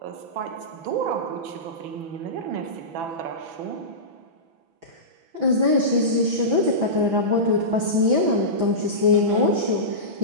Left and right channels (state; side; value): late; left; 6.0 ms